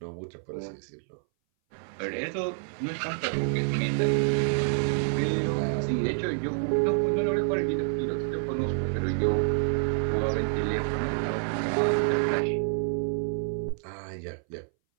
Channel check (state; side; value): silent; left; 59 dB below the other